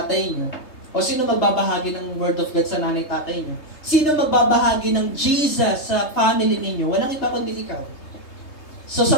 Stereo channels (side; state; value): right; late; 3.3 ms